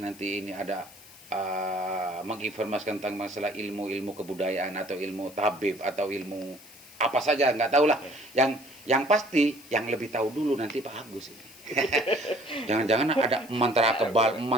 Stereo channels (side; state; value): left; noise; hiss, 21 dB below the sound